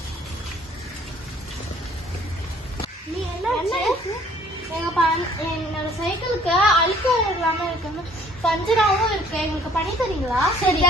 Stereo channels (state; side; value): normal; both; correlation 0.57